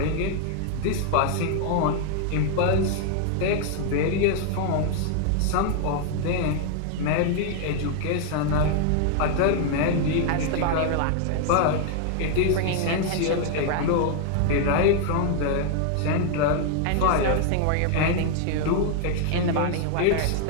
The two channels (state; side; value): different; both; correlation 0.00